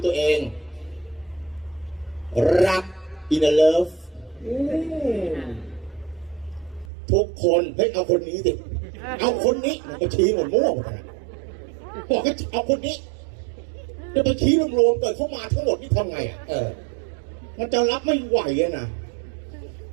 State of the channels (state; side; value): drops out; left; at 6.9 s